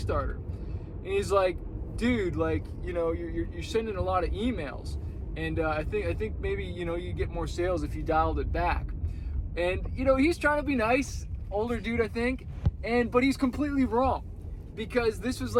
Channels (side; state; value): both; identical; correlation 1.00